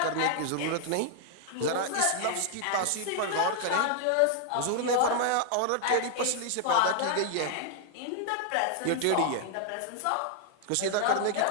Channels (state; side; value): different; both; correlation 0.00